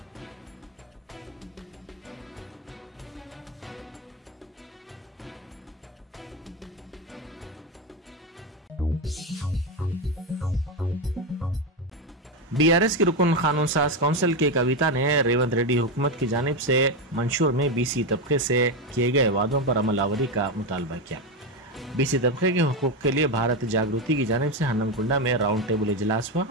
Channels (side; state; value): both; normal; correlation 0.11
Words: बीआरएस की रुकन कानून साज काउंसिल के कविता ने रेवंत रेड्डी हुकूमत की जानिब से मंशूर में बीसी तबके से किए गए वादों पर अमलावरी का मुतालबा किया। बीसी तबके के हुकूक के लिए भारत जागृति की जानिब से हन्नमकुंडा में राउंड टेबल इजलास हुआ।